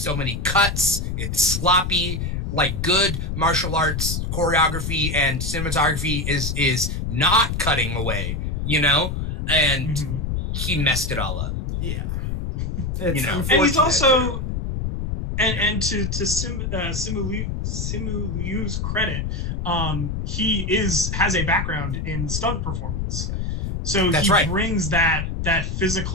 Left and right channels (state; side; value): noise; left; rumble, 2 dB below the sound